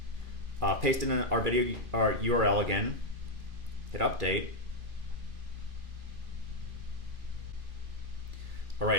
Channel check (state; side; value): late; left; 2.5 ms